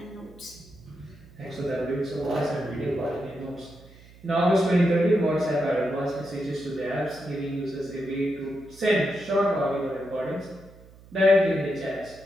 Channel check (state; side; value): noise; right; hum, 23 dB below the sound